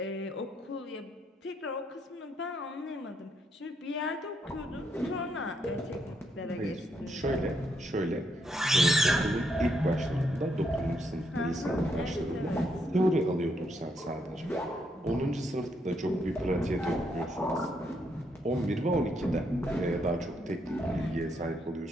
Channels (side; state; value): both; normal; correlation 0.76